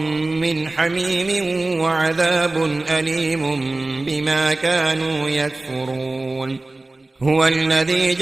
حميم وعذاب أليم بما كانوا يكفرون. هو الذي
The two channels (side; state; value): left; quieter; 3.0 dB